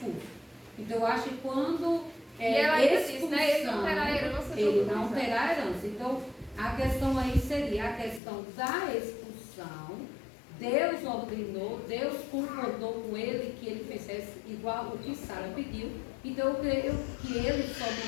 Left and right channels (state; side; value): drops out; right; at 8.2 s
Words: Então, eu acho que quando E ela ainda disse, expulsão, né? Ele não terá herança. ele não terá herança. Então, a questão aí seria a questão da expulsão. Deus ordenou, Deus concordou com ele que ele fizesse igual o que Sara pediu. Então eu creio que ele só